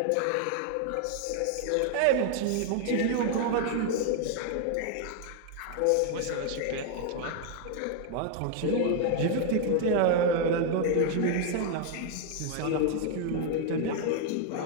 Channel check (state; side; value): different; both; correlation 0.00